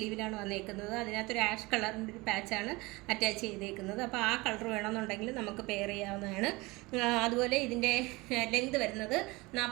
വന്നിരിക്കുന്നത്. അതിനകത്തൊരു ആഷ് കളറിൻ്റെ ഒരു പാച്ചാണ് അറ്റാച്ച് ചെയ്തേക്കുന്നത്. അപ്പോൾ ആ കളർ വേണമെന്നുണ്ടെങ്കിൽ നമുക്ക് പെയർ ചെയ്യാവുന്നതാണ്. അതുപോലെ ഇതിൻ്റെ ലെങ്ത് വരുന്നത്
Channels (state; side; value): quieter; left; 23.2 dB